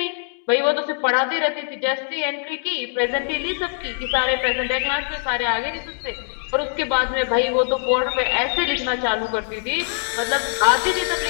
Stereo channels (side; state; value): right; silent; 64 dB below the other